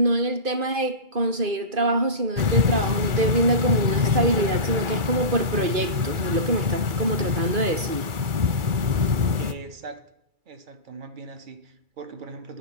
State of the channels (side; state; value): left; late; 2.3 ms